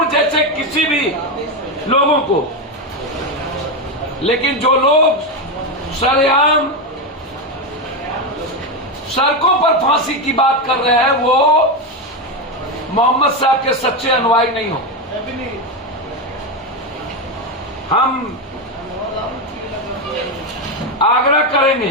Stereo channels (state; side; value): normal; both; correlation 0.11